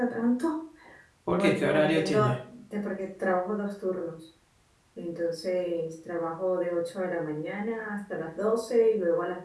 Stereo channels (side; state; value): both; identical; correlation 1.00